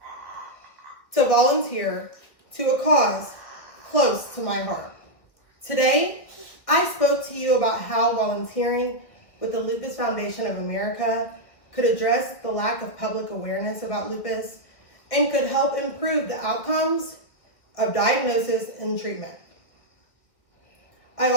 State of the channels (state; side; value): late; right; 1.7 ms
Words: to volunteer to a cause close to my heart. Today, I spoke to you about how volunteering with the Lupus Foundation of America could address the lack of public awareness about lupus and could help improve the outcomes of diagnosis and treatment. I